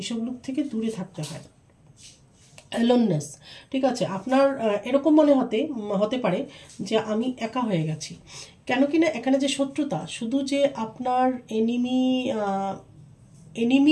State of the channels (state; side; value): identical; both; correlation 1.00